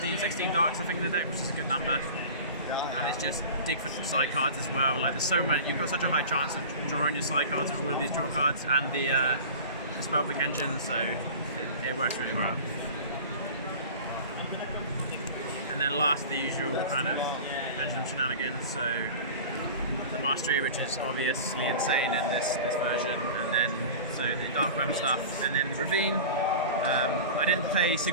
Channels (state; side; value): inverted; both; correlation -0.36